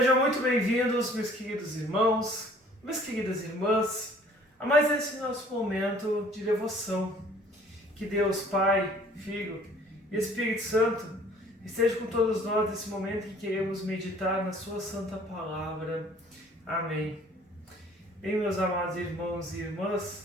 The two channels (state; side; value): normal; both; correlation 0.55